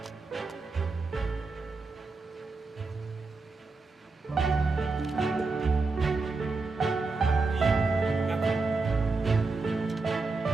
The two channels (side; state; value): left; quieter; 3.8 dB